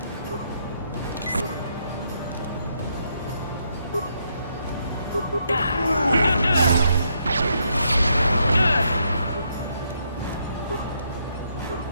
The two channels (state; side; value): inverted; both; correlation -0.75